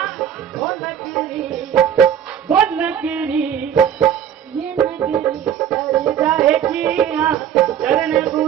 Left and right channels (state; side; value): quieter; left; 9.2 dB